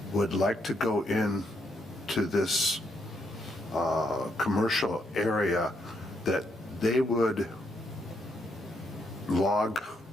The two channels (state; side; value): normal; both; correlation 0.76